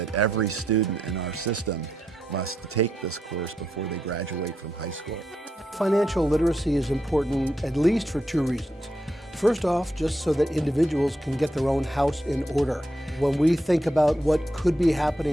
every student in our system must take this course before they graduate from high school. Financial literacy is important at least for two reasons. First off, just so that individuals can get their own house in order. When we think about what could be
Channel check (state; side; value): normal; both; correlation 0.82